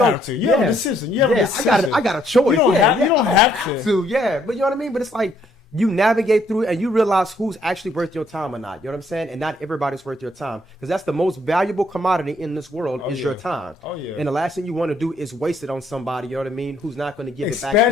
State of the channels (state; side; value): normal; both; correlation 0.68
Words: to. You have a decision. You have a decision. I got a choice. You don't have to. Yeah, but you know what I mean. But it's like, you navigate through it and you realize who's actually worth your time or not. You know what I'm saying? And not everybody's worth your time, because that's the most valuable commodity in this world is your time. Oh yeah. And the last thing you want to do is waste it on somebody. You know what I mean? Who's not going to give it